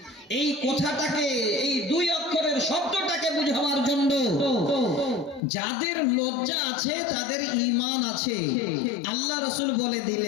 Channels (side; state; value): right; drops out; at 5.4 s